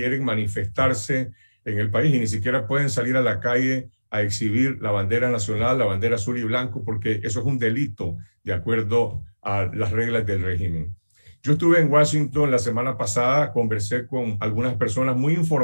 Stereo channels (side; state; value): both; inverted; correlation -1.00